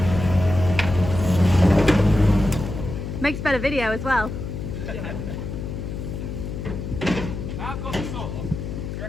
Makes better video as well. Yeah. I've got the saw. Do you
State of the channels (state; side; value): noise; left; hum, 6 dB below the sound